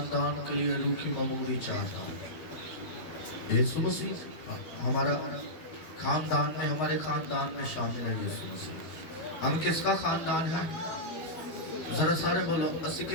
के लिए रूह की ममूरी चाहता हूँ। यीशु मसीह हमारा खानदान में, हमारे खानदान में शामिल है यीशु मसीह। हम किसका खानदान है? जरा सारे बोलो, असी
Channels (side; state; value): right; late; 12 ms